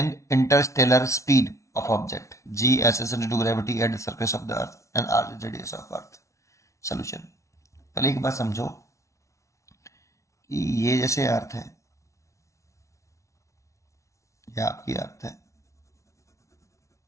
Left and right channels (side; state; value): right; late; 0.14 ms